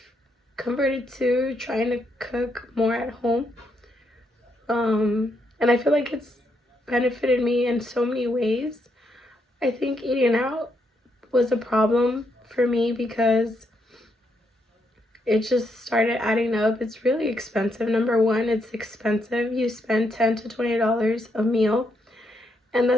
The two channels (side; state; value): both; normal; correlation 0.78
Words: converted to trying to cook more at home. And I feel like it's benefited me in so many ways. I think eating out was a problem for me because it just started adding up. It's really expensive. Number one, it's expensive. You spend $10 to $20 a meal, and